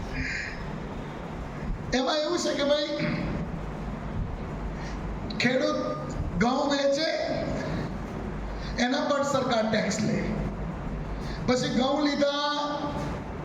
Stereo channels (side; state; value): both; identical; correlation 1.00